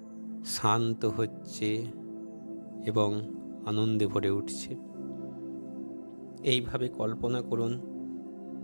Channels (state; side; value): inverted; both; correlation -1.00